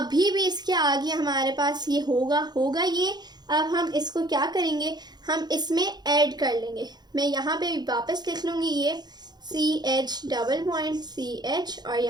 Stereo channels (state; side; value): late; left; 0.20 ms